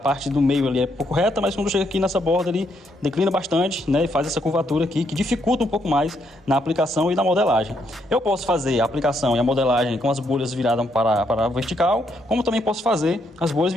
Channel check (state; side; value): normal; both; correlation 0.75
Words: do meio ali é pouco reta, mas quando chega aqui nessa borda ele declina bastante, né? E faz essa curvatura aqui, que dificulta um pouco mais na aplicação e na modelagem. Eu posso fazer a aplicação e a modelagem com as bolhas viradas para a vertical, como também posso fazer as bolhas